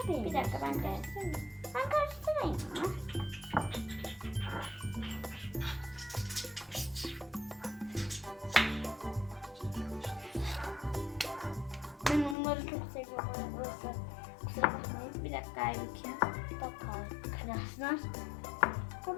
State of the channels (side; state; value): right; drops out; at 12.4 s